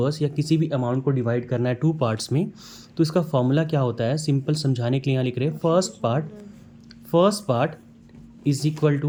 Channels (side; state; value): both; identical; correlation 1.00